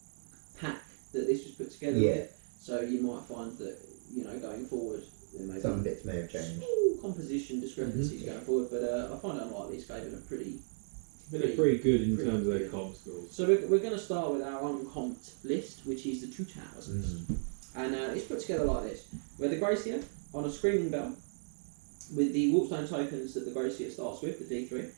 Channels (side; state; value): left; silent; digital silence